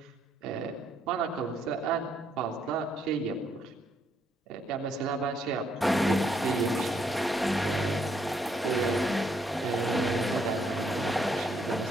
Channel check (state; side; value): normal; both; correlation 0.72